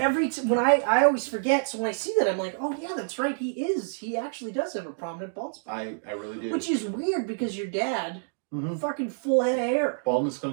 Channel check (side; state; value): left; silent; digital silence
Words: I always forget, so when I see that, I'm like, oh, yeah, that's right, he actually does have a prominent bald spot. I really do. Which is weird, because your dad, fucking full head of hair. Baldness